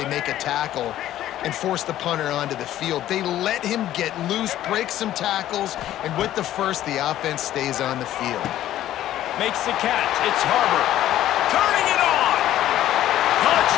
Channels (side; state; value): right; quieter; 13.0 dB